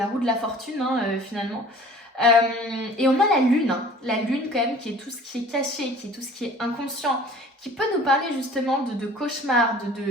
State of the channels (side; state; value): both; normal; correlation 0.47